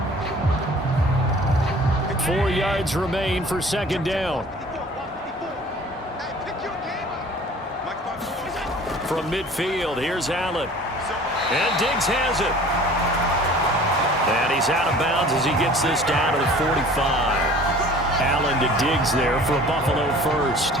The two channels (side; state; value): both; normal; correlation 0.47